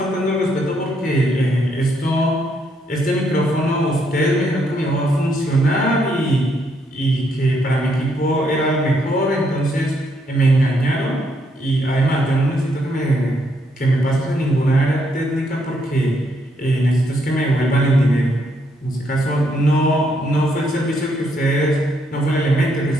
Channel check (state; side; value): normal; both; correlation 0.74